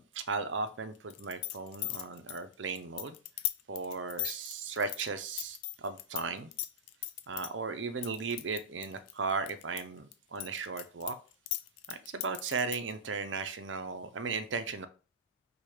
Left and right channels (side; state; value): both; normal; correlation -0.17